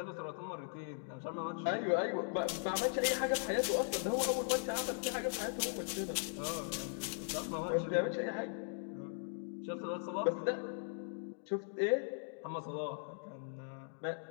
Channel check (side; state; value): right; silent; digital silence